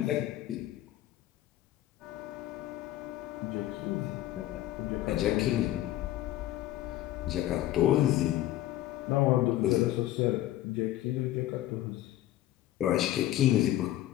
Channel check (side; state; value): right; quieter; 14.3 dB